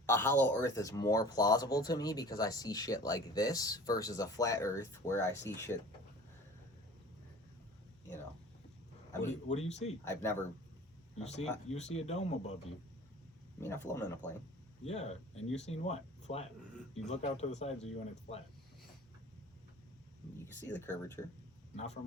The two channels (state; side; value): normal; both; correlation 0.43